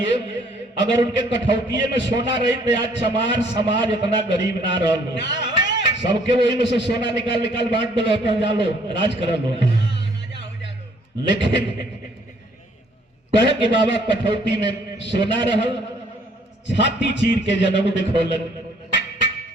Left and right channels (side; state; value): both; normal; correlation 0.62